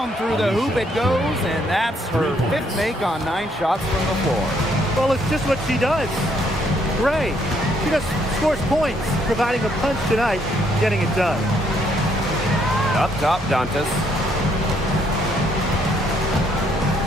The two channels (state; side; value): normal; both; correlation 0.70